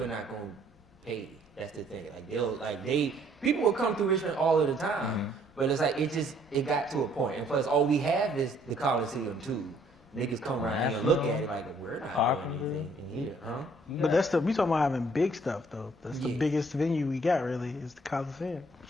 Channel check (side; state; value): both; normal; correlation 0.63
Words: are not going to pay. That's the thing. People will come through Richmond all of the time, but it's like it got to a point. And plus, all we have is the Coliseum too. Niggas come around here and look at it like we're not doing anything in here, huh? But we talking about having big stuff though. That's the biggest venue we got really is the Coliseum.